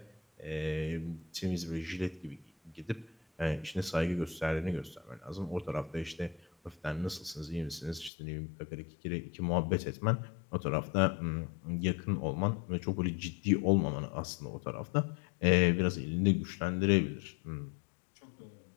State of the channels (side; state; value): right; drops out; at 8.1 s